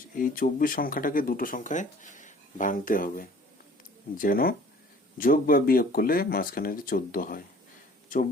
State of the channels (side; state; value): both; normal; correlation 0.50